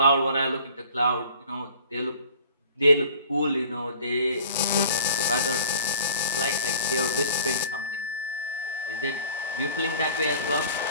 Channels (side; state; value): both; inverted; correlation -0.49